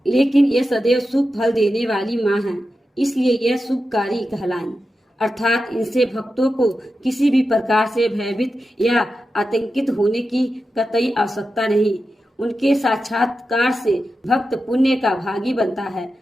लेकिन ये सदैव शुभ फल देने वाली माँ है, इसलिए यह शुभकारी कहलाई। अर्थात इनसे भक्तों को किसी भी प्रकार से भयभीत या आतंकित होने की कतई आवश्यकता नहीं। उनके साक्षात्कार से भक्त पुण्य का भागी बनता है।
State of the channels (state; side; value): normal; both; correlation 0.91